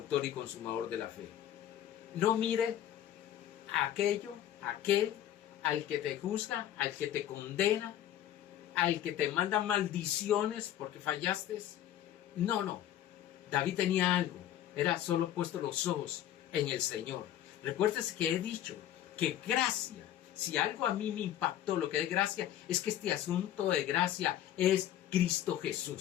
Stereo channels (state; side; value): quieter; right; 11.7 dB